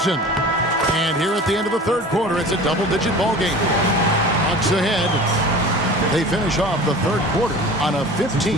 And here at the end of the third quarter, it's a double-digit ball game. Bucks ahead. They finish off the third quarter on a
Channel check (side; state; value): both; normal; correlation 0.39